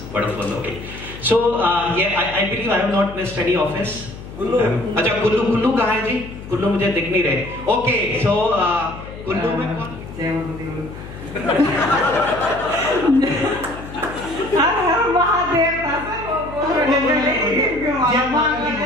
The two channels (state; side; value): noise; left; hum, 13 dB below the sound